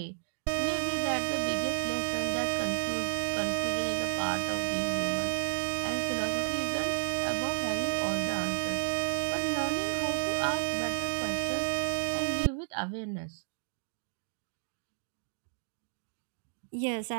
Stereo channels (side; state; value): left; silent; digital silence